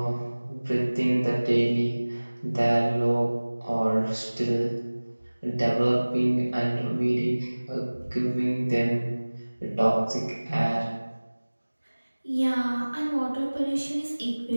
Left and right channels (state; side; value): inverted; both; correlation -1.00